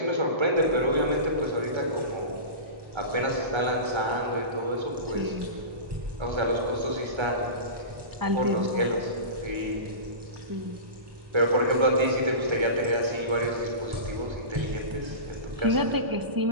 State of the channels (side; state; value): left; late; 1.3 ms